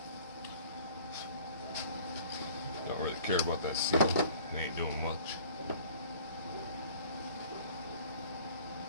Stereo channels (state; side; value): inverted; both; correlation -0.50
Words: Don't really care about that seal. It ain't doing much.